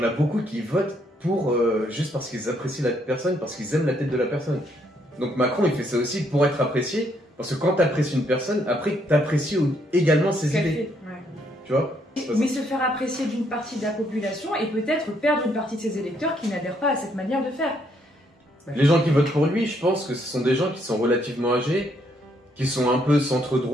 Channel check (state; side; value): normal; both; correlation 0.71